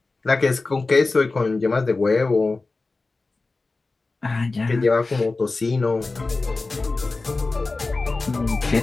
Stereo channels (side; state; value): right; quieter; 3.6 dB